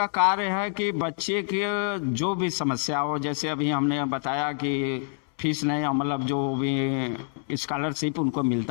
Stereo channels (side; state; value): right; silent; 61 dB below the other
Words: कार्य है कि बच्चे के जो भी समस्या हो, जैसे अभी हमने बताया कि फीस नहीं, मतलब जो भी स्कॉलरशिप उनको